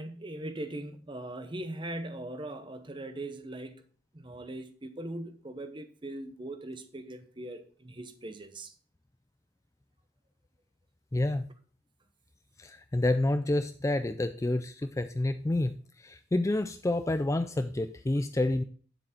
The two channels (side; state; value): both; normal; correlation 0.88